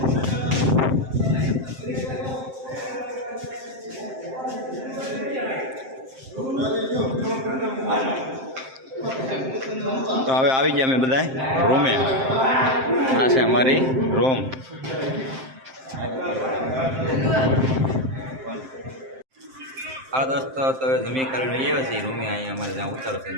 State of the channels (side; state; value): left; late; 7.6 ms